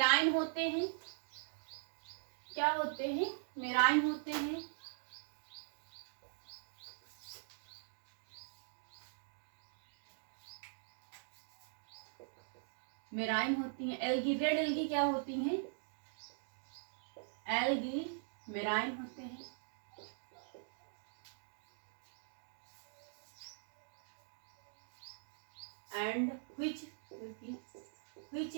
होते हैं. क्या होते हैं? मेराइन होते हैं. मेराइन होती हैं. एल्गी रेड एल्गी क्या होती हैं? एल्गी मेराइन होते हैं. And which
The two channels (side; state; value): left; silent; digital silence